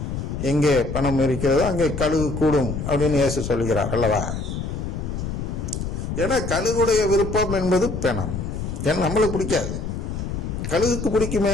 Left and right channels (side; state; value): left; noise; rumble, 4 dB below the sound